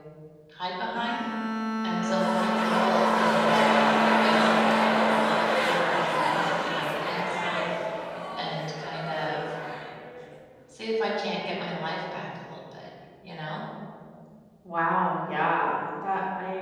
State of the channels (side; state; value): both; identical; correlation 1.00